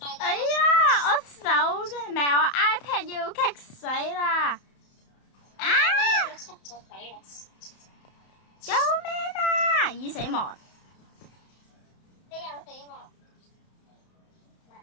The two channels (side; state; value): right; late; 31 ms